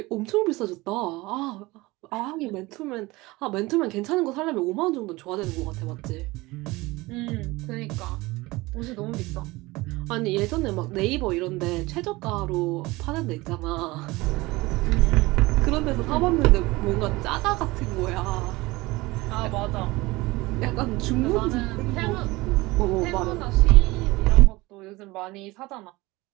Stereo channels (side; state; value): left; quieter; 21.3 dB